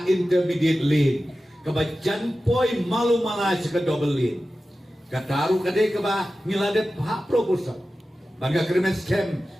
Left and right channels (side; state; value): both; normal; correlation 0.94